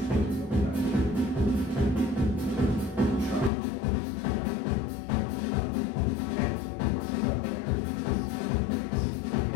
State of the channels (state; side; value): drops out; right; at 3.5 s